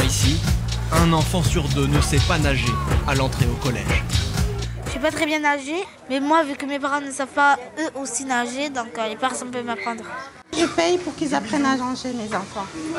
un enfant sur deux ne sait pas nager à l'entrée au collège. Je sais pas très bien nager, mais moi, vu que mes parents ne savent pas eux aussi nager, donc personne ne peut m'apprendre. Je paye pour qu'ils apprennent à nager, mes enfants.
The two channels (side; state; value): both; identical; correlation 1.00